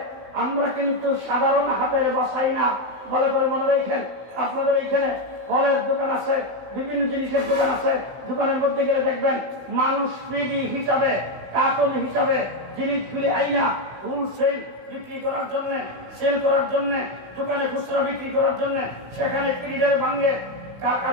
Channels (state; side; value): late; left; 16 ms